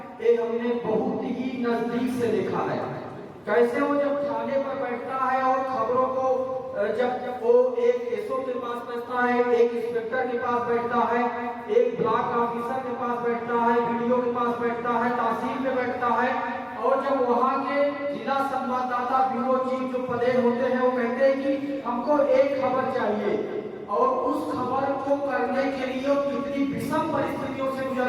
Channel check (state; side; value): identical; both; correlation 1.00